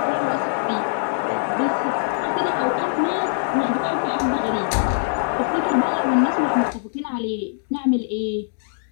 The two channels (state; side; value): silent; right; digital silence